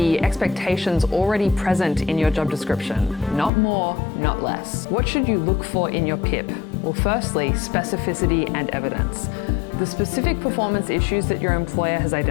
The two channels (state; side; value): drops out; right; at 3.5 s